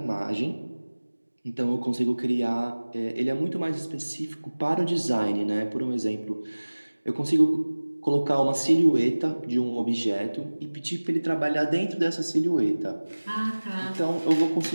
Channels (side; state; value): both; inverted; correlation -1.00